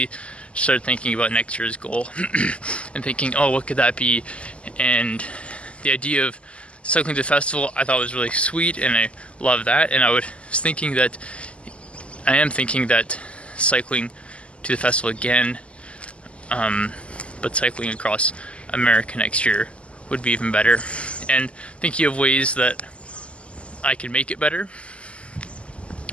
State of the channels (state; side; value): late; right; 0.057 ms